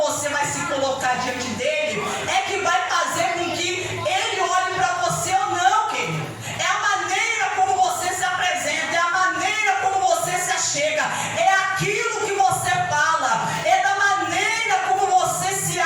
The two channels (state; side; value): identical; both; correlation 1.00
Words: você vai se colocar diante dele, é que vai fazer com que ele olhe para você ou não, querido. É a maneira como você se apresenta, é a maneira como você se achega, é aquilo que você fala, é da maneira como você se